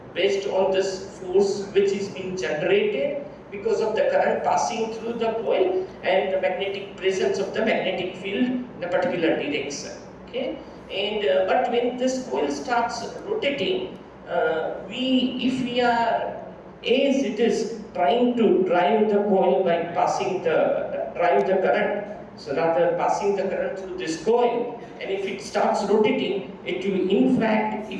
based on this force which is being generated because of the current passing through the coil and the magnetic presence of the magnetic field in a particular direction. Okay, and but when this coil starts rotating, if we are, as it is trying to drive the coil by passing drive the current, so rather passing the current through this coil, and if it starts rotating, it will, in fact,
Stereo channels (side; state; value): both; identical; correlation 1.00